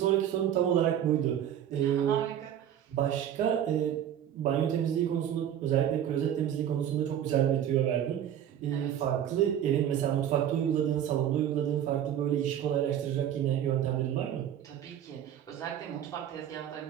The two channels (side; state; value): left; quieter; 10.2 dB